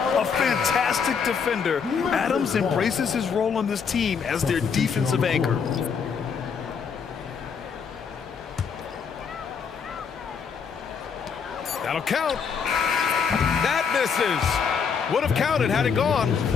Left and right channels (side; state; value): right; quieter; 6.3 dB